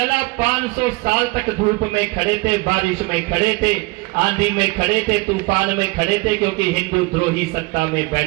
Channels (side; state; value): left; quieter; 25.1 dB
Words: 500 साल तक धूप में खड़े थे, बारिश में खड़े थे, आंधी में खड़े थे, तूफान में खड़े थे, क्योंकि हिंदू द्रोही सत्ता में